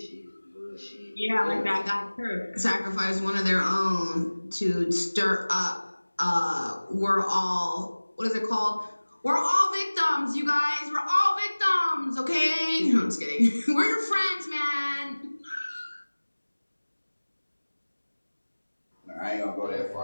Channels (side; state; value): both; inverted; correlation -1.00